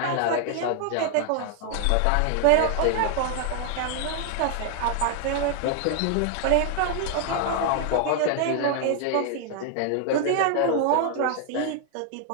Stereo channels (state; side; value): different; both; correlation 0.00